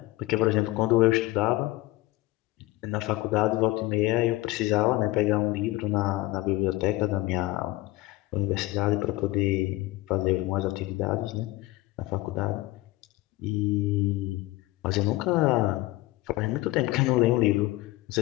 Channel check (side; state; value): right; quieter; 19.1 dB